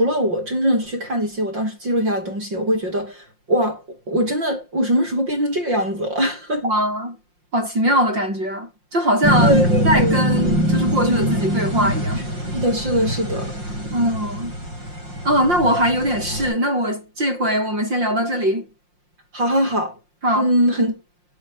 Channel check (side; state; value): left; late; 5.6 ms